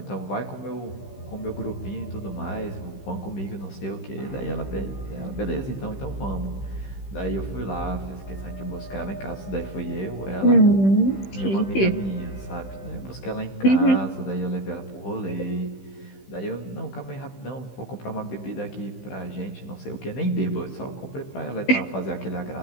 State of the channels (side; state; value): right; late; 15 ms